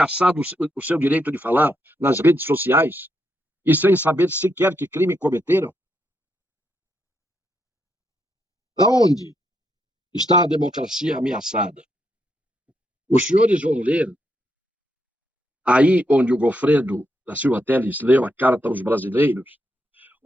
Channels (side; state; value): both; normal; correlation 0.80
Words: o seu direito de falar nas redes sociais e sem saber sequer que crime cometeram? Aonde está a democracia ameaçada? Os senhores vão ler, aí onde o Goffredo da Silva Telles leu a Carta aos Brasileiros,